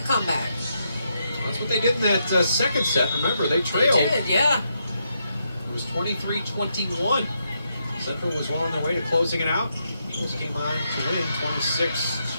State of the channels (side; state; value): both; inverted; correlation -0.80